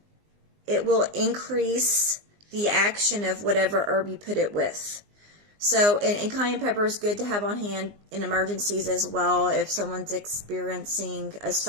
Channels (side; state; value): left; late; 19 ms